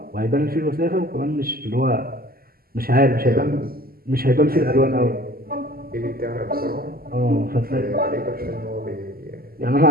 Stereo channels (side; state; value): left; late; 0.43 ms